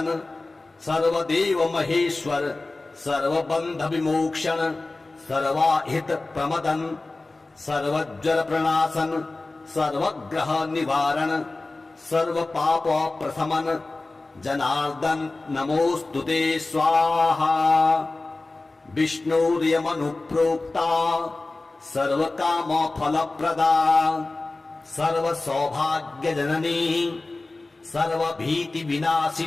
सर्वदेव महेश्वर सर्वबंध विमोक्षण सर्वाहित प्रमदन सर्वज्वर प्रणाशन सर्वग्रह निवारण सर्व पाप प्रशमन जनार्दन नमोस्तुते स्वाहा। विष्णुर्यमनुप्रोक्ता सर्वकाम फलप्रदा सर्व सौभाग्य जननी सर्वभीति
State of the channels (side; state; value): right; quieter; 3.2 dB